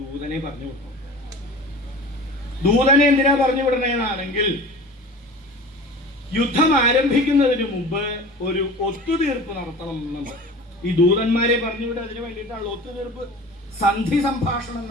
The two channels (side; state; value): both; normal; correlation 0.38